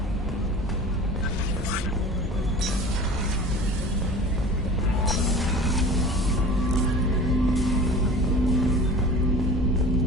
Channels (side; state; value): both; normal; correlation 0.40